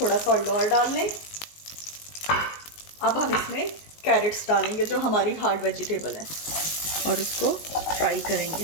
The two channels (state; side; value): late; right; 19 ms